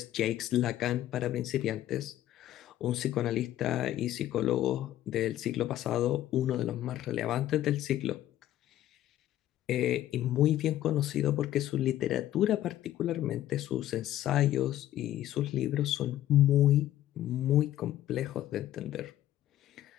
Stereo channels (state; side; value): quieter; right; 13.1 dB